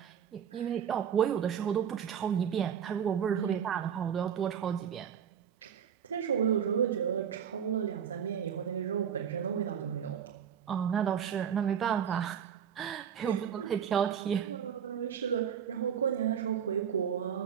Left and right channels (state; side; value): quieter; left; 8.3 dB